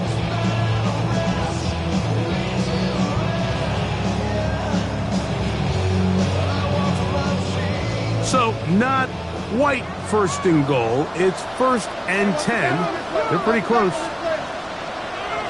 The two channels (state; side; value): identical; both; correlation 1.00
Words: So not quite first and goal. It's first and 10. They're pretty close.